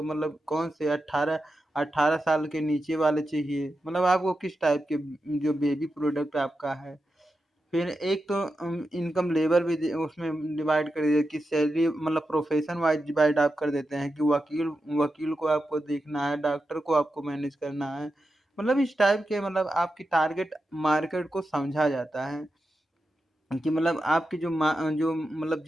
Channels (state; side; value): normal; both; correlation 0.89